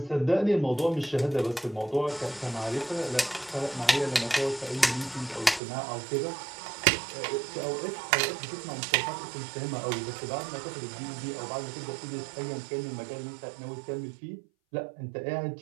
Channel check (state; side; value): drops out; left; at 5.6 s